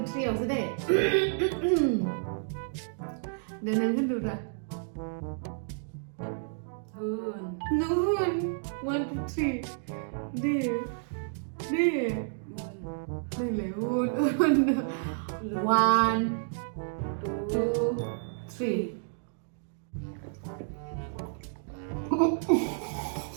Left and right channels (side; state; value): left; silent; digital silence